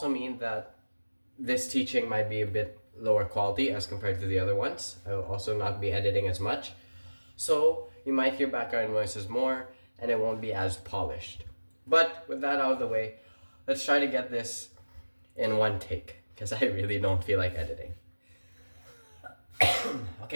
mean that this teaching might be a bit lower quality as compared to the other ones. I will also not be editing as much, so you might hear background noises more, and it won't be as polished. But with that out of the way, let's try to get this in one take, because I really don't feel like editing.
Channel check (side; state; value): both; inverted; correlation -1.00